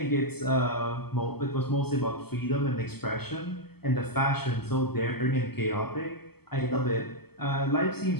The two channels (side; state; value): right; late; 0.96 ms